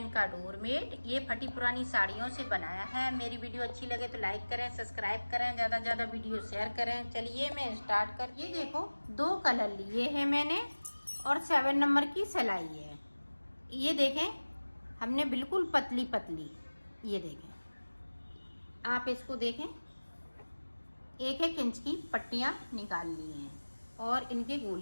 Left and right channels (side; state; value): both; inverted; correlation -1.00